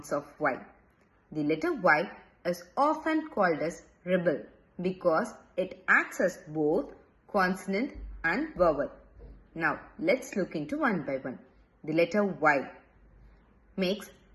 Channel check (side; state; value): both; identical; correlation 1.00